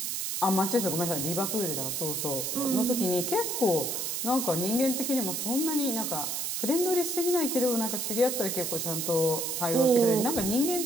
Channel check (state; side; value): noise; right; hiss, 2 dB below the sound